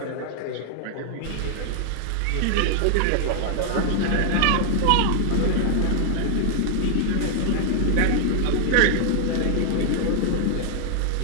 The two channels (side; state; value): both; different; correlation 0.00